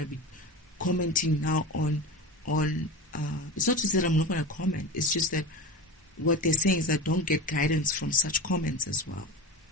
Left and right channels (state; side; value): normal; both; correlation 0.28